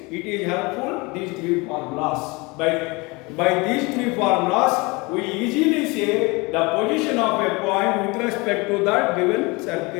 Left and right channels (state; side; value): quieter; right; 25.7 dB